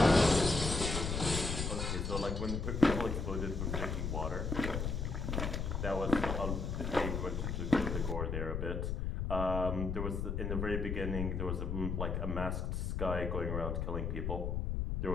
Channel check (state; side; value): noise; left; rumble, 1 dB below the sound